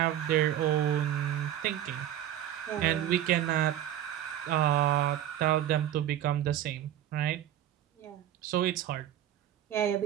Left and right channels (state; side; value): quieter; left; 11.6 dB